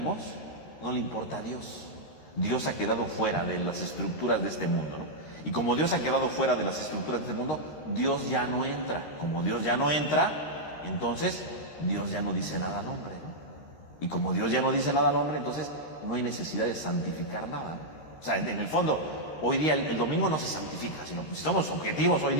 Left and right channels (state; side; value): late; right; 13 ms